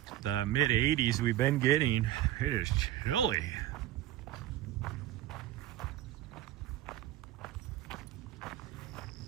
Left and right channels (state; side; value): quieter; left; 13.3 dB